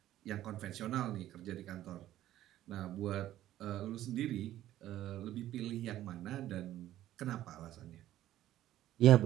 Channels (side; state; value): left; quieter; 13.5 dB